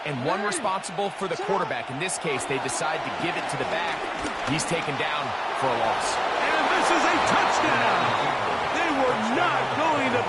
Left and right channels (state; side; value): identical; both; correlation 1.00